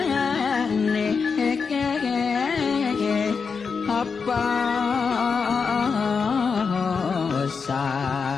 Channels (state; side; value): quieter; right; 5.4 dB